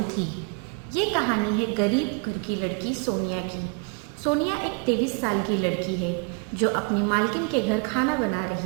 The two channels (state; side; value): quieter; left; 34.0 dB